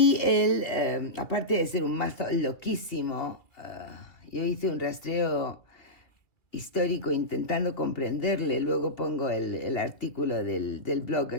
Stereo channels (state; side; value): late; right; 2.6 ms